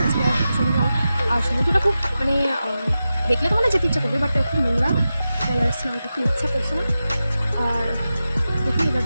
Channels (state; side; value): inverted; both; correlation -0.92